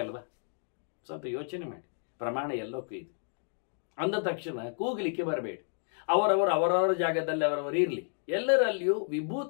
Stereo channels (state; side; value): silent; right; 57 dB below the other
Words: ಅಲ್ವಾ? ಸ್ವಲ್ಪ ಯೋಚನೆ ಮಾಡಿ. ಪ್ರಮಾಣ ಎಲ್ಲಕ್ಕೂ ಇದೆ. ಅಂದ ತಕ್ಷಣ ಕೂಗಲಿಕ್ಕೆ ಬರಬೇಡಿ. ಅವರವರ ಜಾಗದಲ್ಲಿ ಅವರವರು ಇರಲಿ. ಎಲ್ಲರಲ್ಲಿಯೂ